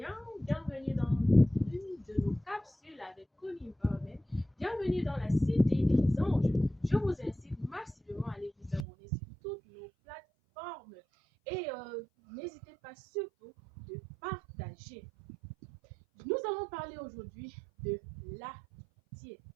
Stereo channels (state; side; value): drops out; left; at 8.8 s